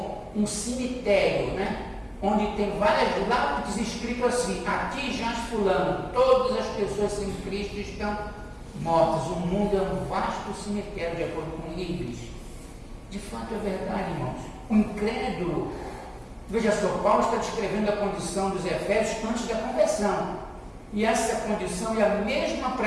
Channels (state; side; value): identical; both; correlation 1.00